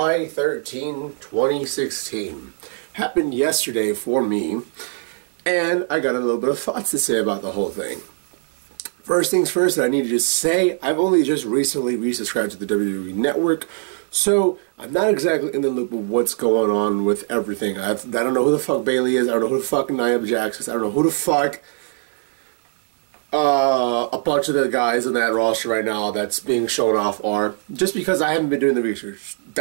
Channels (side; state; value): left; silent; 60 dB below the other